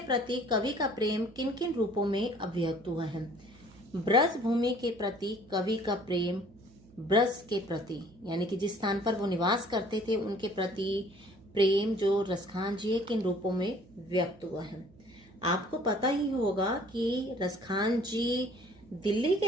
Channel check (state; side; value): noise; right; hum, 25 dB below the sound